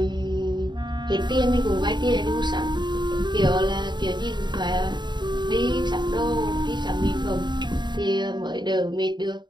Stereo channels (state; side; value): late; left; 0.21 ms